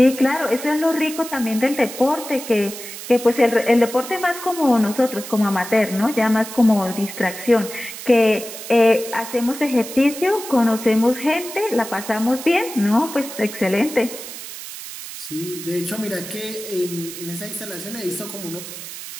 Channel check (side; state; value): right; noise; hiss, 11 dB below the sound